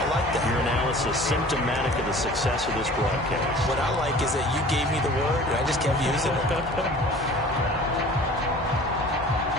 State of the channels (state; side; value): normal; both; correlation 0.45